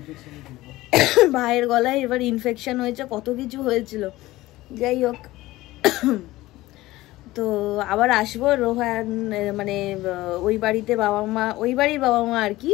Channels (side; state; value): right; quieter; 17.8 dB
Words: ভাইয়ের গলায় এবার ইনফেকশন হয়েছে, কত কিছু হয়েছিল। যাই হোক, তো আবার আসবো। রোহান মানে ওই বাড়ির বাবা মা আর কি,